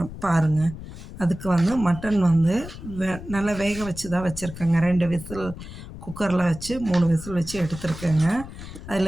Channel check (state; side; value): noise; left; rumble, 12 dB below the sound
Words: பாருங்கள். அதுக்கு வந்து மட்டன் வந்து நல்லா வேக வச்சு தான் வச்சுருக்கேங்க. 2 விசில் குக்கரில் வச்சு 3 விசில் வச்சு எடுத்துருக்கேங்க.